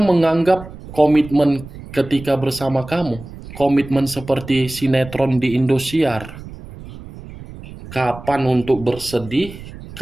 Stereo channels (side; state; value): right; noise; rumble, 15 dB below the sound